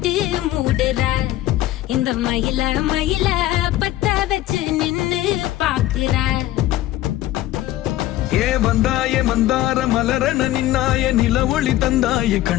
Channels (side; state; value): right; quieter; 14.9 dB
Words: மூடுற இந்த மயில மயில பத்த வச்சு நின்னு பாக்குற. ஏ வந்தாய மந்தார மலரன நின்னாய நில ஒளி தந்தாய